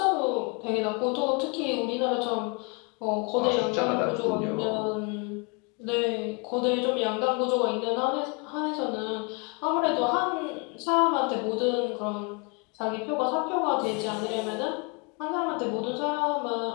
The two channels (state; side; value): quieter; right; 32.4 dB